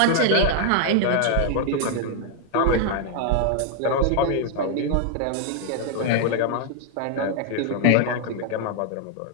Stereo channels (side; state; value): both; different; correlation 0.00